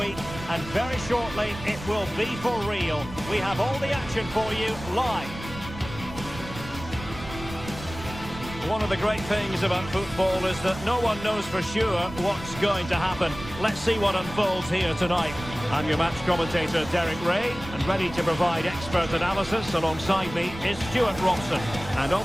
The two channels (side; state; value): right; noise; rumble, 13 dB below the sound